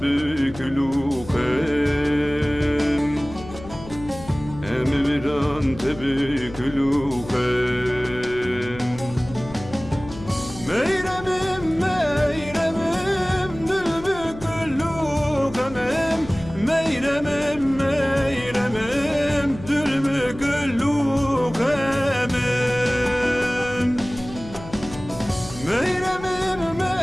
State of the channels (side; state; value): left; noise; hum, 15 dB below the sound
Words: lukem Emirdan tebük lukem Meyremim meyremim Dülbük lukemim Meyremim meyremim Dülbük lukemim Meyremim